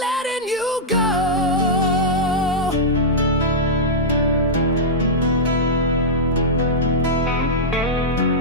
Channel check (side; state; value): both; normal; correlation -0.08